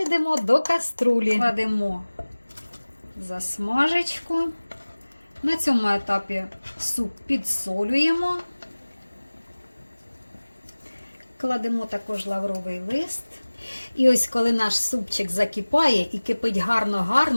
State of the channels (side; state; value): both; inverted; correlation -1.00